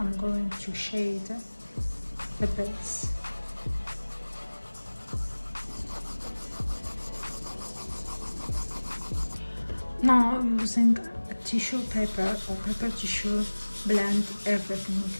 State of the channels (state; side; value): inverted; both; correlation -1.00